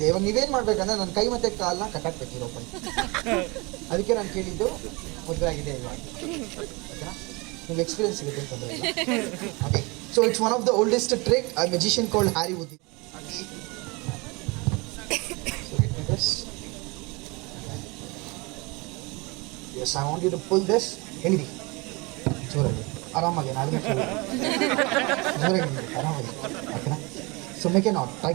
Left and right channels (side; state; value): left; quieter; 26.8 dB